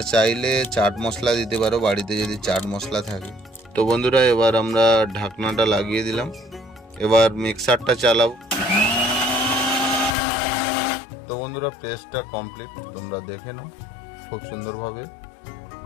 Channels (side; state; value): right; drops out; at 10.2 s